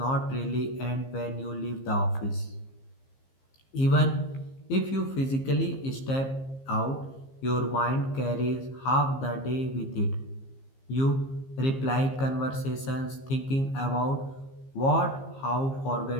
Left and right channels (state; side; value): late; right; 15 ms